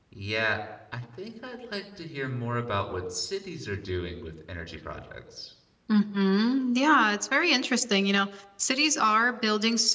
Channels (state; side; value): identical; both; correlation 1.00